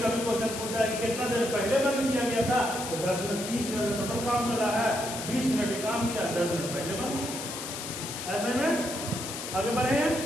कभी क्वेश्चन पूछा है कितना देर पहले बंद किया गया था, तो 10 मिनट 30 मिनट का टोटल काम चला है, 20 मिनट काम किया, 10 मिनट पहले बंद किया। ऐसे में आगे बढ़े हैं,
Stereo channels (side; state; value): left; noise; hiss, 7 dB below the sound